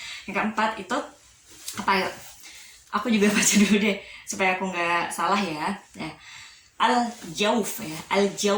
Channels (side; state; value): both; identical; correlation 1.00